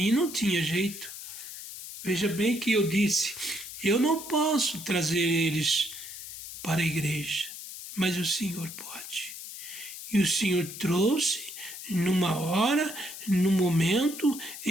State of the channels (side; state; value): left; noise; hiss, 11 dB below the sound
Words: não tinha jeito. Veja bem que eu disse, eu não posso trazer eles para a igreja, mas o Senhor pode. E o Senhor trouxe numa hora, no momento